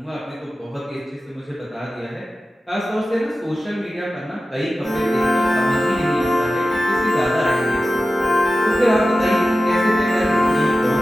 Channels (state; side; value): normal; both; correlation 0.94